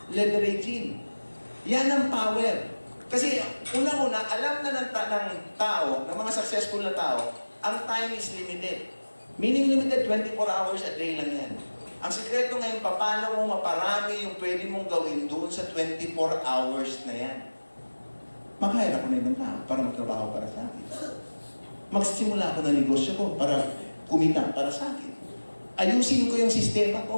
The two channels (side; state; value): both; inverted; correlation -1.00